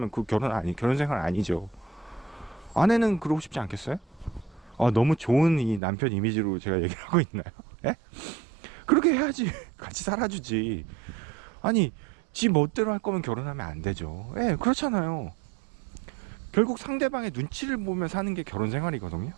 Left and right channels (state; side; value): drops out; left; at 5.8 s